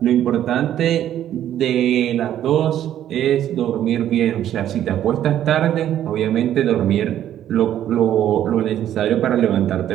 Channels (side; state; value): left; quieter; 11.3 dB